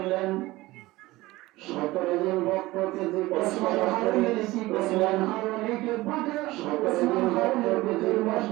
17 জন ভক্তকে যে ওসমান হারুনি কি করলেন? হারুনিকে বাঁধে 17 জন ভক্তকে যে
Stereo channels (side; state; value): left; quieter; 19.1 dB